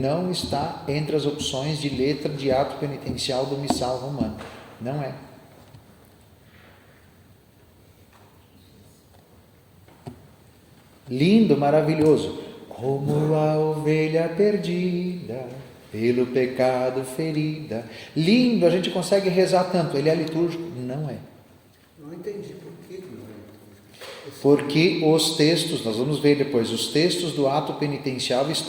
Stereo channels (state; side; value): identical; both; correlation 1.00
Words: está entre as opções de letra de ato penitencial do missal romano, não é. Lindo, maravilhoso, como a ovelha perdida, pelo pecado ferida. Lindo, a gente consegue rezar tanto. Ele é litúrgico? Não é. Não entendi por que não é litúrgico. Porque os textos, nós vamos ver depois, os textos do ato penitencial